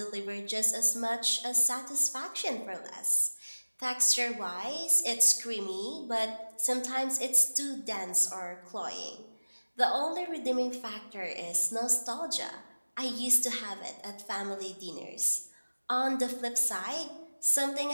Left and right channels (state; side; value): inverted; both; correlation -1.00